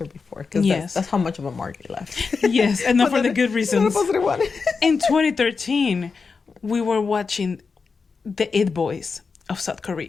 before because that's how much of a mark it left. Yes, and not for the good reasons. Positive one. In 2013, we were watching the It Boys of South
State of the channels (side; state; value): right; quieter; 4.9 dB